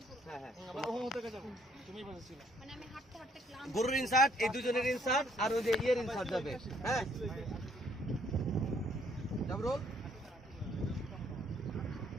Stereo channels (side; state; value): both; normal; correlation 0.66